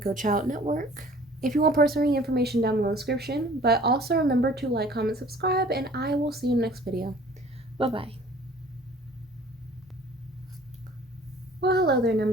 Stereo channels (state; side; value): normal; both; correlation 0.51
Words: Child Network. If you want personal information, down below in the description. But also remember to like, comment, subscribe, and I will see you in the next video. Bye-bye. Well, hello there,